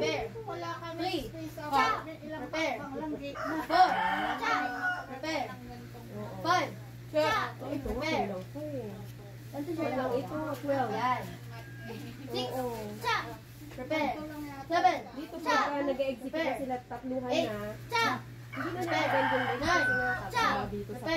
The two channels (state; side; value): identical; both; correlation 1.00